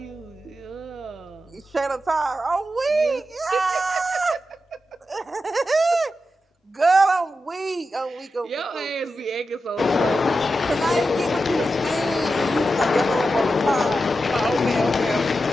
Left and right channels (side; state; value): both; normal; correlation 0.89